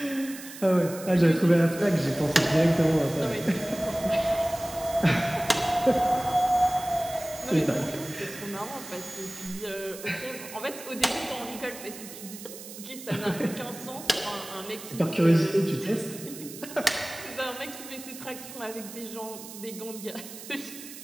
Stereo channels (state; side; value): noise; right; hiss, 13 dB below the sound